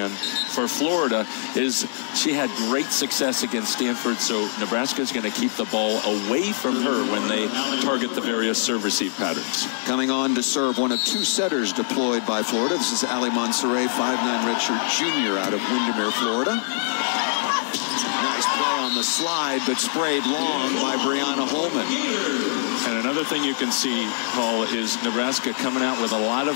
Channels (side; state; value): right; silent; digital silence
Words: for Florida, she had great success against Stanford. So Nebraska is going to keep the ball away from her when they target the various serve-receive patterns. Coming on to serve, one of 2 setters deployed by Florida. This is Ali Monserrat, 5'9" redshirt junior out of Windermere, Florida. Nice play on the slide, but sprayed long by Brianna Holman. And another thing you can see, Paul, is Nebraska coming out with a lot